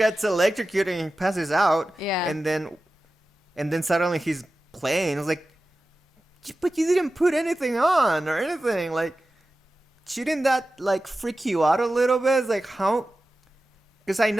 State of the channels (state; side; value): normal; both; correlation 0.94